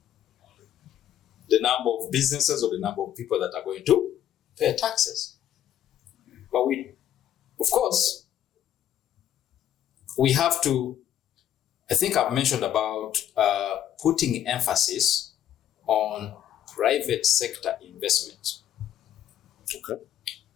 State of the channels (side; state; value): right; quieter; 10.9 dB